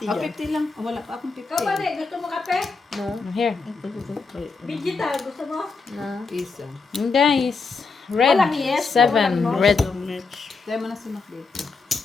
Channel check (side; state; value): right; quieter; 4.4 dB